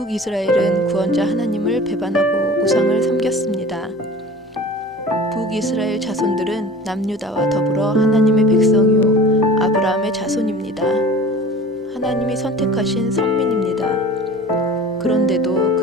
구원자 하나님을 배반하고 우상을 섬겼습니다. 북이스라엘 자손들은 남유다와 더불어 하나님의 백성이요 아브라함의 자손입니다. 하나님이 선택하신 선민입니다. 그런데도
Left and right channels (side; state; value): both; normal; correlation 0.41